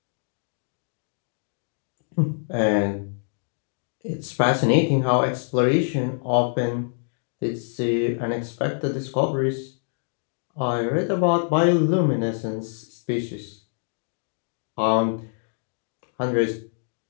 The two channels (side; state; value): right; silent; digital silence